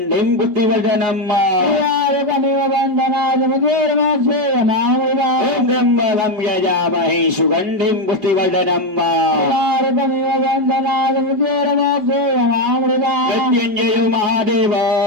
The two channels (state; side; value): late; left; 5.2 ms